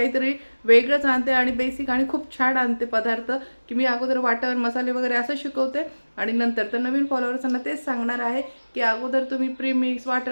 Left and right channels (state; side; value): inverted; both; correlation -1.00